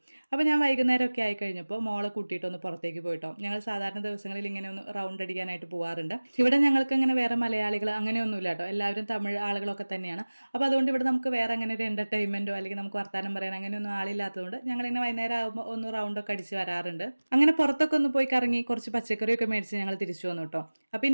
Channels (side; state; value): both; inverted; correlation -1.00